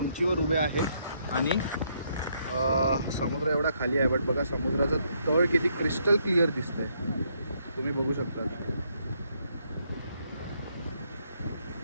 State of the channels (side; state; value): both; inverted; correlation -0.73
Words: उभे आहे आणि समुद्र एवढा खाली आहे, बट बघा समुद्राचं तळ किती क्रिस्टल क्लिअर दिसतंय, तुम्ही बघू शकता.